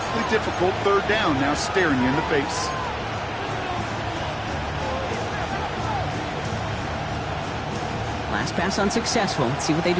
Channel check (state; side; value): identical; both; correlation 1.00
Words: difficult 3rd down now staring you in the face. Last pass unsuccessful. Let's see what they